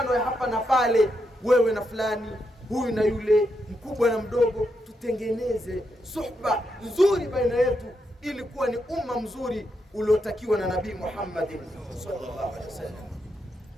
ya hapa na pale, wewe na fulani, huyu na yule, mkubwa na mdogo. Tutengeneze suhba nzuri baina yetu ili kuwa ni umma mzuri uliotakiwa na Nabii Muhammad sallallahu alaihi wasallam.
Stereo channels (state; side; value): normal; both; correlation 0.82